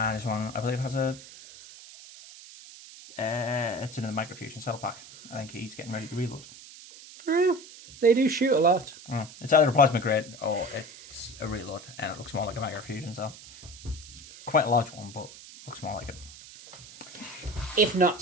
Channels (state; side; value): noise; right; hiss, 17 dB below the sound